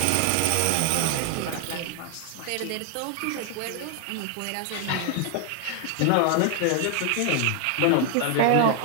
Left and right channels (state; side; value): different; both; correlation 0.00